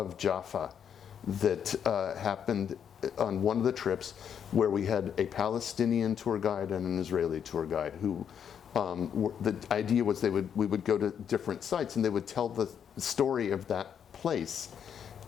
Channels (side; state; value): right; quieter; 8.2 dB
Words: Jaffa that happened on one of the trips where we had a Palestinian tour guide and an Israeli tour guide who the idea was we would go to different sites and they would tell the story of that place